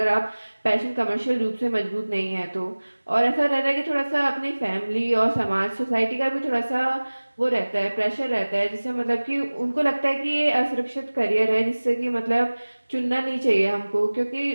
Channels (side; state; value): both; inverted; correlation -1.00